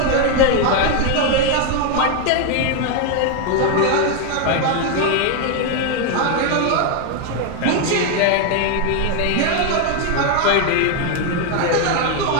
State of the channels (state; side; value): different; both; correlation 0.01